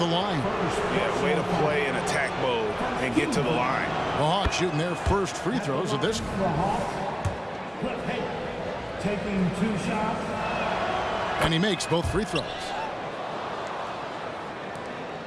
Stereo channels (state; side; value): identical; both; correlation 1.00